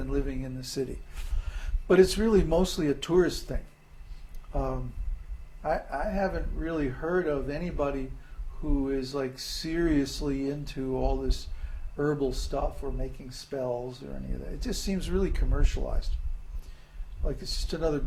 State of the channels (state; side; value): identical; both; correlation 1.00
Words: living in the city. But it's really mostly a tourist thing. I haven't really heard of anybody who is like seriously into all this herbal stuff or making spells or any of that. It just seems really commercialized. Like it's just another